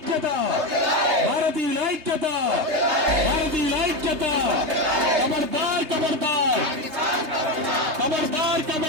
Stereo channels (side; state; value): left; late; 3.2 ms